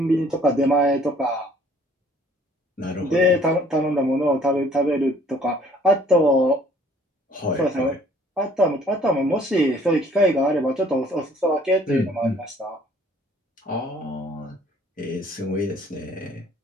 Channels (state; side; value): normal; both; correlation 0.58